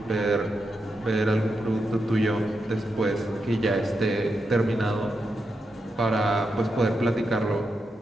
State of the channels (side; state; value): both; normal; correlation 0.86